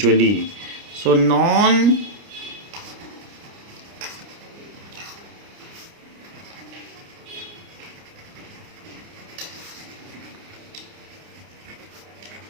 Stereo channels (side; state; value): left; late; 29 ms